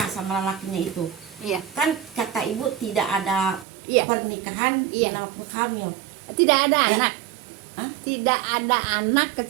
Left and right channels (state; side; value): drops out; left; at 3.7 s